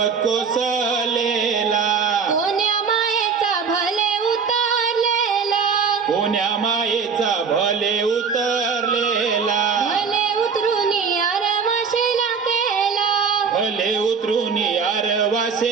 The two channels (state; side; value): quieter; left; 5.8 dB